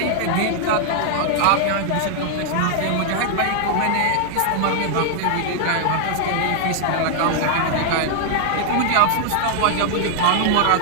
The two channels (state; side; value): different; both; correlation 0.00